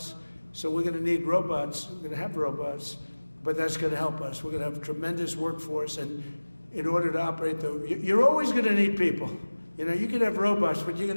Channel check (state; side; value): inverted; both; correlation -1.00